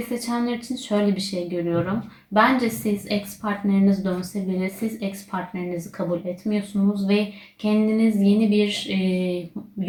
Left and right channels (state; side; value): identical; both; correlation 1.00